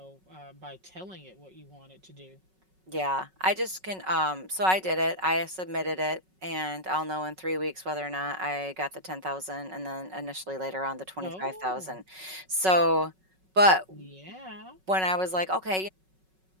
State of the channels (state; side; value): late; left; 5.4 ms